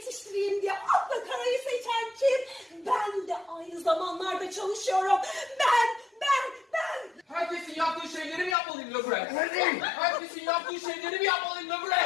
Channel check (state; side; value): drops out; right; at 8.6 s